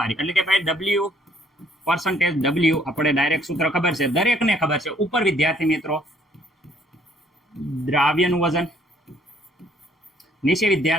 એટલે કે ભાઈ W પર્સન્ટેજ W આપણે ડાયરેક્ટ સૂત્ર ખબર છે, દરેકને ખબર છે. ઉપર વિદ્યાર્થી મિત્રો દ્રાવ્યનું વજન, નીચે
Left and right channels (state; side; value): normal; both; correlation 0.63